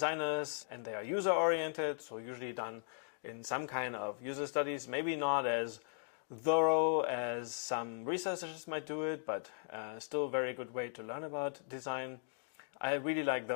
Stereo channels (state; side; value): silent; right; digital silence